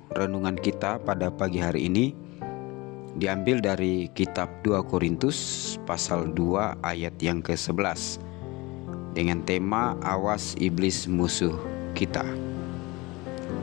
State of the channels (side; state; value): right; quieter; 23.3 dB